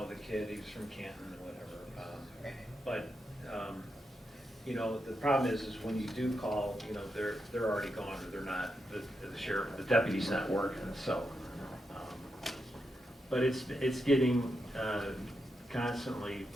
kid, he's from Canton or whatever. But the problem is when you do call, they're already gone, or they're not. The sheriff, the deputy's not working. So, but it's getting constantly,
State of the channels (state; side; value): normal; both; correlation 0.85